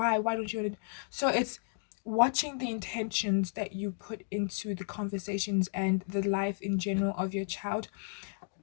don't you want to? So it's watching the intentions that you put into the conversations and the life in general of your child.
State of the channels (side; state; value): right; silent; digital silence